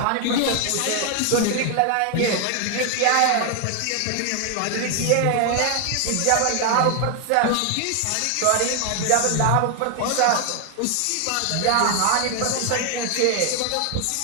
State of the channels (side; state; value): both; different; correlation 0.00